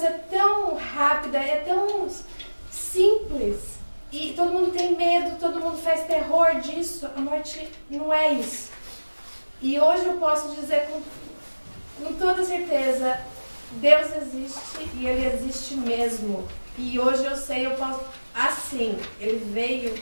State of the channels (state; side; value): inverted; both; correlation -1.00